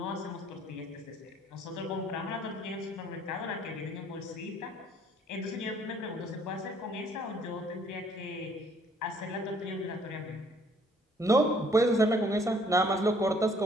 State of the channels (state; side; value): normal; both; correlation 0.61